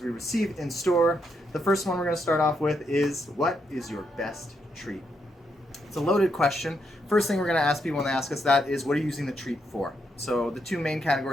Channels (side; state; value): both; normal; correlation 0.79